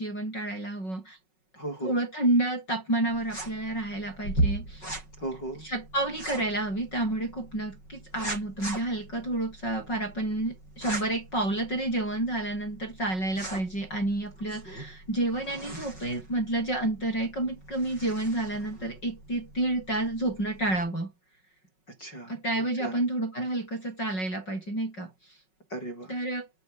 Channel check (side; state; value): right; late; 5.4 ms